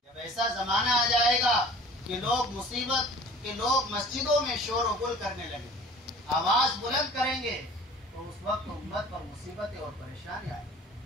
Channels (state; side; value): normal; both; correlation 0.48